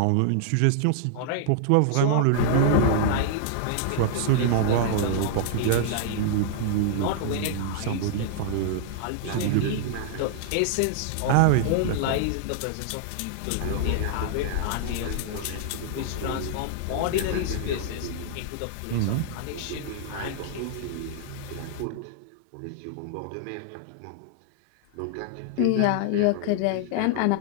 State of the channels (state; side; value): different; both; correlation -0.01